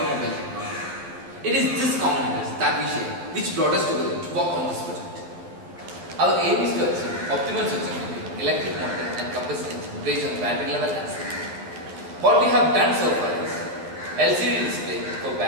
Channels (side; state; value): left; late; 11 ms